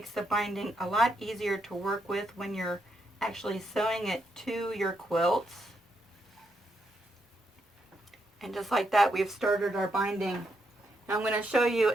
the binding a lot easier to work with when you're actually sewing it to your quilts. And just like that, we've started our binding. Now I'm going to show you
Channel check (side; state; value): both; normal; correlation 0.79